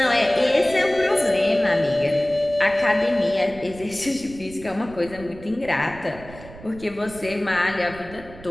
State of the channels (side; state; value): right; noise; rumble, 17 dB below the sound